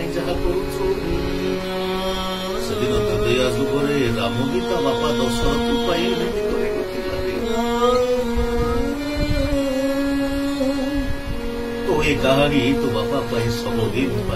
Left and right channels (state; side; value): identical; both; correlation 1.00